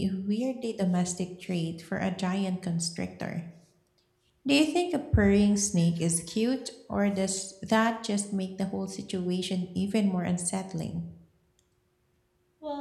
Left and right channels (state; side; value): identical; both; correlation 1.00